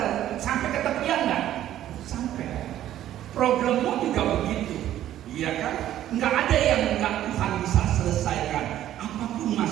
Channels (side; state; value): left; quieter; 12.4 dB